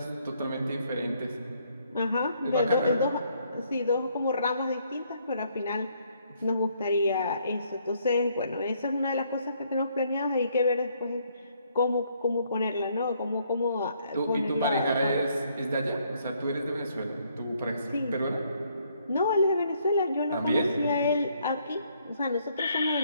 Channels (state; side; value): inverted; both; correlation -0.69